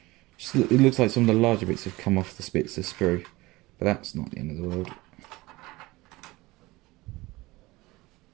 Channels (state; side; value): quieter; left; 20.7 dB